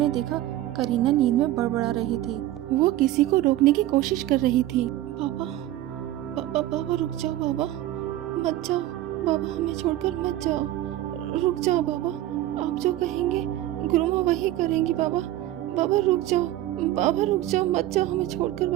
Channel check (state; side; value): quieter; left; 14.4 dB